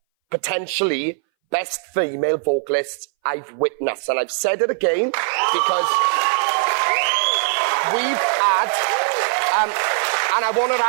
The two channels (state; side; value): silent; left; 61 dB below the other